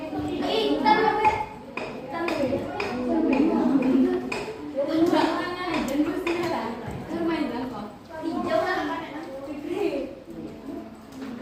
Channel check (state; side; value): identical; both; correlation 1.00